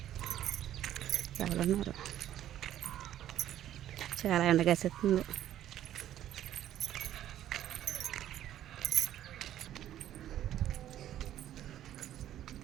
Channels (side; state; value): left; quieter; 12.0 dB